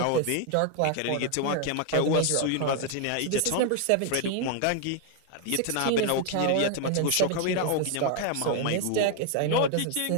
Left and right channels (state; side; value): different; both; correlation 0.00